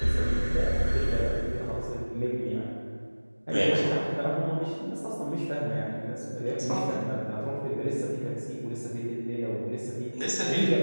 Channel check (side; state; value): both; inverted; correlation -1.00